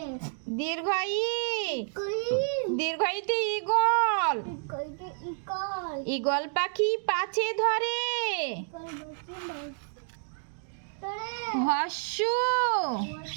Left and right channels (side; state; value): left; silent; digital silence